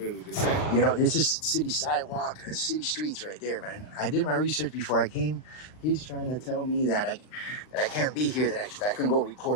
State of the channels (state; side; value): late; right; 39 ms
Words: to say. You know, this is city sidewalk, city streets right there, man. I did my research before I came. He's trying to tell me that I can't be here, that I can go